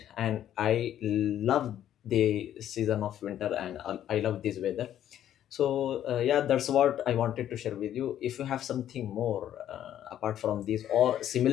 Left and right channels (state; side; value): quieter; right; 11.1 dB